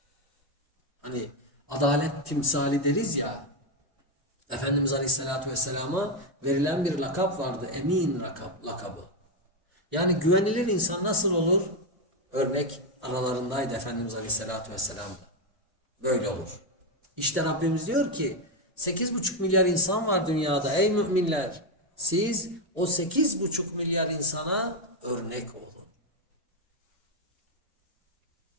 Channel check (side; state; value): both; normal; correlation 0.06